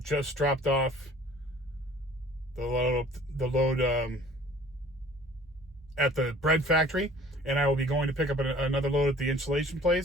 just dropped off the load at the bread factory, and I will be going to pick up another load at the insulation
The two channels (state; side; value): normal; both; correlation 0.50